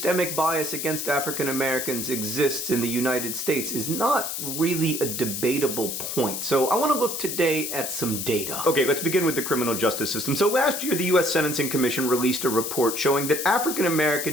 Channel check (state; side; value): noise; left; hiss, 4 dB below the sound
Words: bias against African Americans exists in the United States is not really a debatable point. So I want to look today at some data. Okay, let's begin with the criminal justice system. So last year, the U.S. Sentencing Commission released a report showing that African